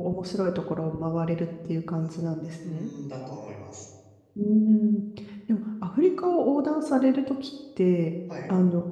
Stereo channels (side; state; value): both; identical; correlation 1.00